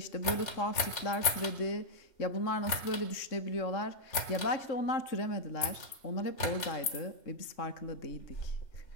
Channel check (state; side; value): late; right; 3.3 ms